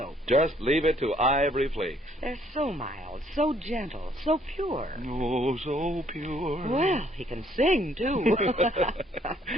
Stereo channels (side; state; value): both; normal; correlation 0.65